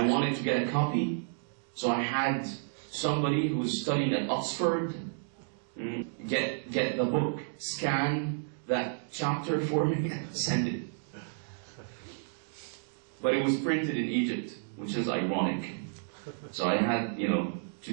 wanted to get a copy, so I had somebody who was studying at Oxford get the book, scan that chapter for me, and send it. But it was printed in Egypt, which is ironic. So I had, to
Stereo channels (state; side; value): silent; left; digital silence